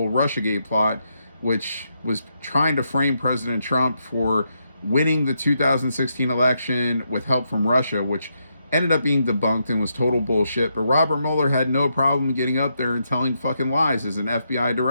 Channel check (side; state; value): both; inverted; correlation -0.81